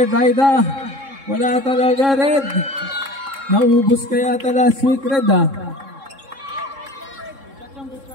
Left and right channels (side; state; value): left; late; 3.7 ms